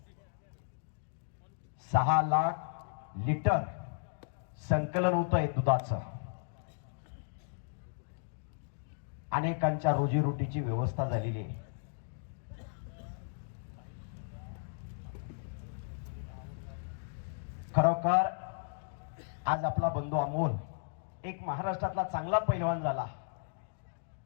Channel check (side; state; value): right; silent; digital silence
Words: 6 लाख लिटर संकलन होत आहे दुधाचं अनेकांच्या रोजीरोटीची व्यवस्था झालेली आहे खरोखर आज आपला बंधू अमोल एक महाराष्ट्रातला चांगला पैलवान झाला